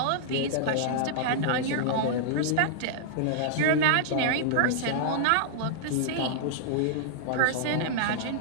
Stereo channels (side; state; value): both; different; correlation -0.01